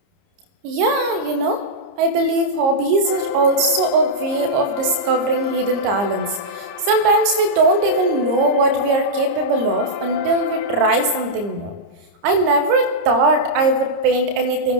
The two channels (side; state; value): left; late; 30 ms